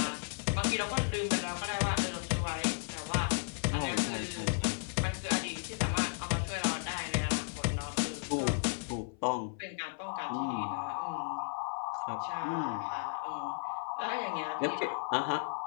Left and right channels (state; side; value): silent; right; 55 dB below the other